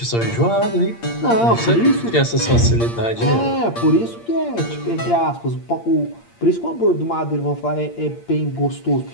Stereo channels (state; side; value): late; right; 8.6 ms